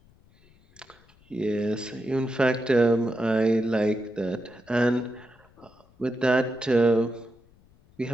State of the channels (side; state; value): left; noise; rumble, 30 dB below the sound